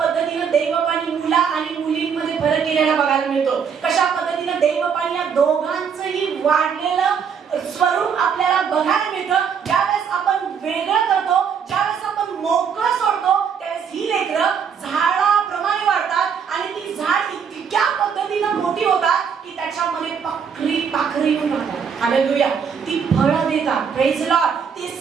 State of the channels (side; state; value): left; quieter; 6.9 dB